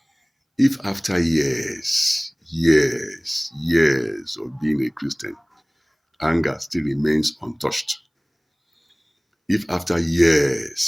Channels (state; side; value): identical; both; correlation 1.00